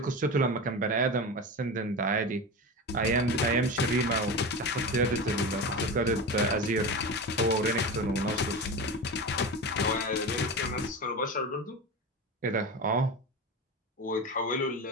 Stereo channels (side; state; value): both; normal; correlation 0.25